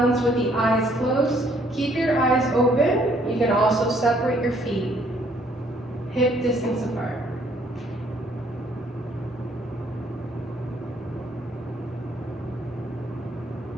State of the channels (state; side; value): normal; both; correlation 0.64